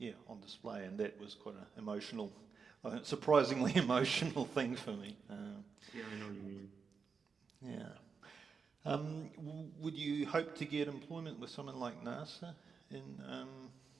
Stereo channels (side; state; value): left; quieter; 5.5 dB